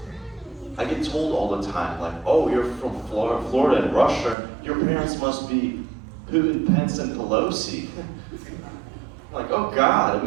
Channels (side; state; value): left; drops out; at 4.4 s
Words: I get told all the time, like, oh, you're from Florida and Russia, your parents must be Putin, Pence, and Pelosi. I'm like, oh God,